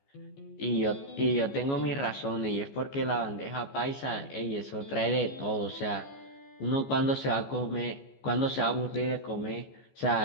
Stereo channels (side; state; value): right; late; 14 ms